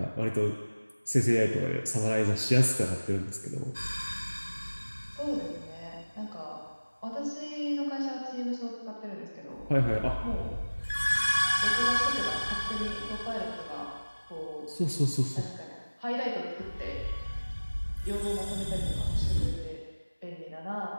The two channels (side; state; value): both; inverted; correlation -1.00